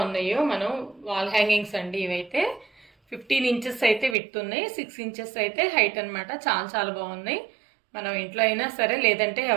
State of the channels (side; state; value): left; drops out; at 4.2 s